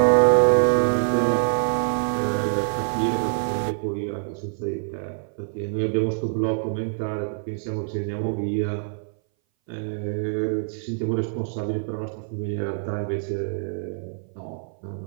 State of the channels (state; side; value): silent; left; 59 dB below the other